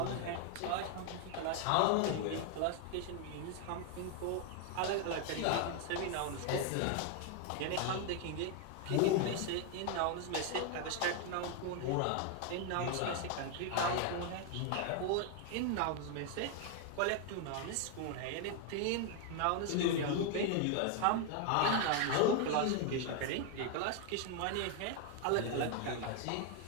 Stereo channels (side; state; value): both; different; correlation 0.01